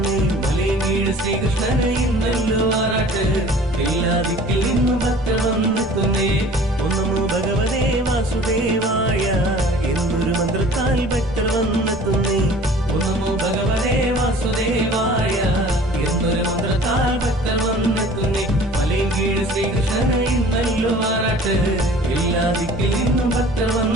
മലയങ്കീഴ് ശ്രീകൃഷ്ണന് ഇന്നല്ലോ ആറാട്ട്, എല്ലാ ദിക്കിൽ നിന്നും ഭക്തർ വന്നെത്തുന്നേ. ഒന്നമോ ഭഗവതേ വാസുദേവായ എന്നൊരു മന്ത്രത്താൽ ഭക്തർ വന്നെത്തുന്നേ. ഒന്നമോ ഭഗവതേ വാസുദേവായ എന്നൊരു മന്ത്രത്താൽ ഭക്തർ വന്നെത്തുന്നേ. മലയങ്കീഴ് ശ്രീകൃഷ്ണന് ഇന്നല്ലോ ആറാട്ട്, എല്ലാ ദിക്കിൽ നിന്നും ഭക്തർ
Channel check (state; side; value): normal; both; correlation 0.47